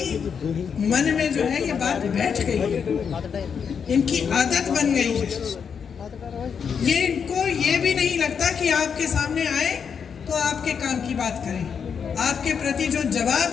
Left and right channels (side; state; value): right; quieter; 6.8 dB